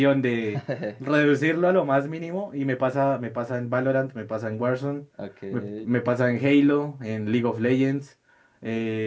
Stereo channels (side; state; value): both; identical; correlation 1.00